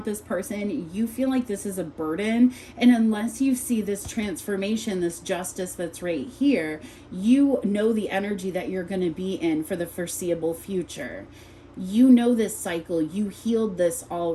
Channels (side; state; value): both; identical; correlation 1.00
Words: this person. You feel like this is a burden. And unless you see this transformation, this justice that's right here, you know the energy that you're going to be in for the foreseeable future. You know this cycle, you healed this